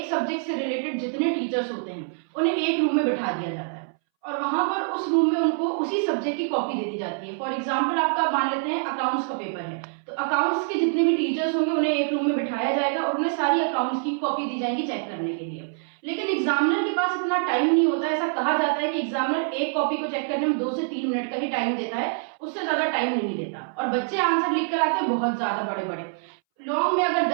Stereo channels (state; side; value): silent; left; 62 dB below the other